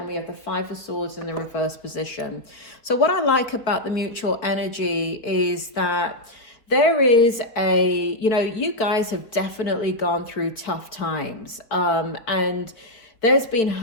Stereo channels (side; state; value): right; late; 4.3 ms